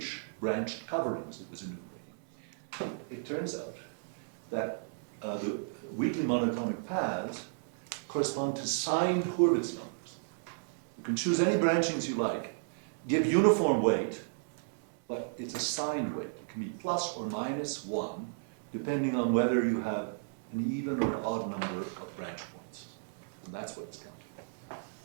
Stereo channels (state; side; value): silent; left; 55 dB below the other